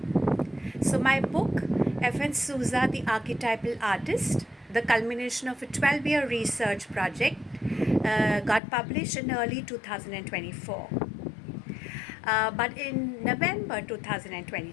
So, my book, Souza, the Archetypal Artist, the culmination of a 12-year research project, got published in early 2024. But in November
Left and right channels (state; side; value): drops out; right; at 8.6 s